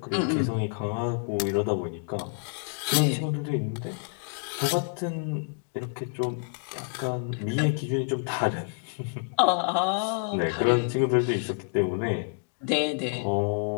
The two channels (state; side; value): silent; right; 59 dB below the other